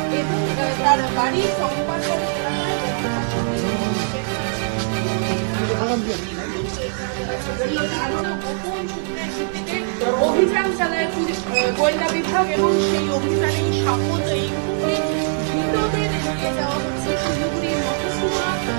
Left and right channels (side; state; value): left; silent; digital silence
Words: এবং তার বাড়ি সম্পাদন অভিযান চালায় পুলিশ গোয়েন্দা বিভাগ এবং সেই অভিযানে সাপোর্ট এই ধৃতদের নিয়ে যাওয়া হচ্ছে শিলিগুড়ির মহকুমা